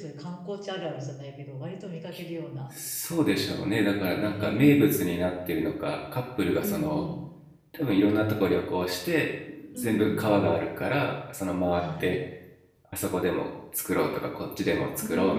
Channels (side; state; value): both; identical; correlation 1.00